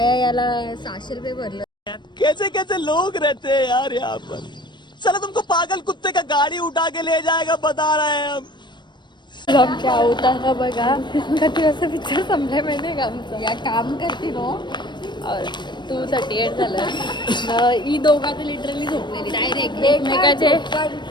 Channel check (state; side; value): late; right; 0.22 ms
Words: याला 600 रुपये भरलं. कैसे कैसे लोग रहते हैं यार यहाँ पर. चलो तुमको पागल कुत्ते का गाड़ी उठा के ले जाएगा, बता रहे हैं हम. आमच्या अवतार बघा कधी असं पिक्चर संपलाय माहिती आहे का आमचं या काम करते नो 2:38 झालं ही दोघा तर लिटरली झोपलेली डायरेक्ट एकमेकाचे